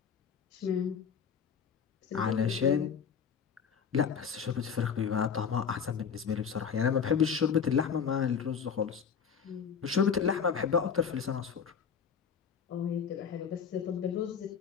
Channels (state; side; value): quieter; right; 6.9 dB